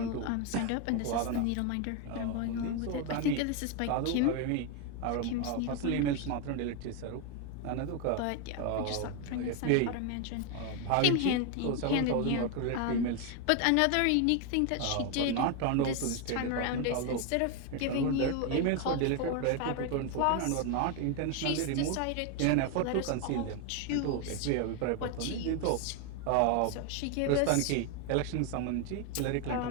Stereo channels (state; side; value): different; both; correlation 0.01